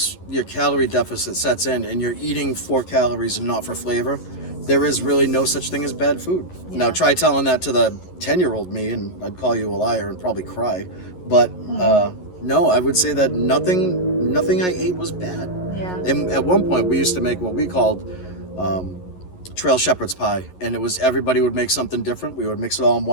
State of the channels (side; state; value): right; late; 11 ms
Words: your calorie deficit sets in and you're eating for calories and not for flavor, there is really no such thing as bad food. Yeah. Now try telling that to the 10-year-old me, and I'd call you a liar and probably cry. But no, I would say that nothing I ate was bad. Yeah. And at one point, we used to make what we called um, trail shepherd's pie, and it was everybody would make something different. We would mix it all in